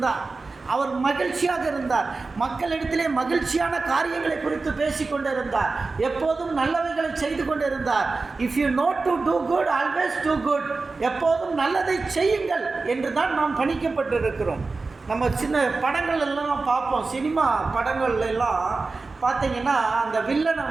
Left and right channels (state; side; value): quieter; left; 3.9 dB